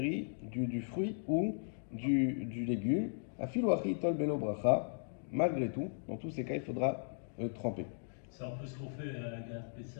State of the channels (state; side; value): silent; right; digital silence